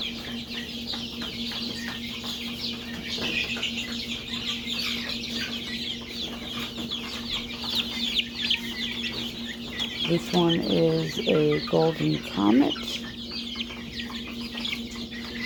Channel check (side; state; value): both; identical; correlation 1.00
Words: This one is a golden comet.